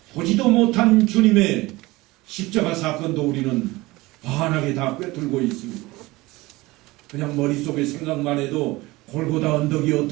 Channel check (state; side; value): quieter; left; 20.6 dB